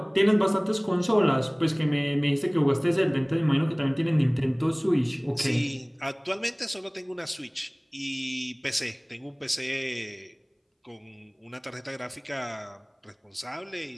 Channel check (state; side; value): identical; both; correlation 1.00